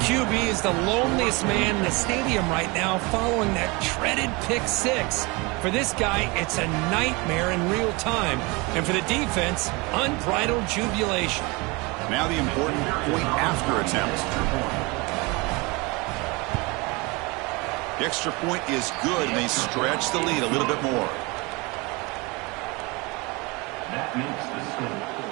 QB is the loneliest man in the stadium right now following that dreaded pick six. For this guy, it's a nightmare in real time. And for the defense, unbridled jubilation. Now the important point after attempt. The extra point is good, and they stretch the lead a little bit more. That makes the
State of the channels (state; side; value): quieter; left; 26.2 dB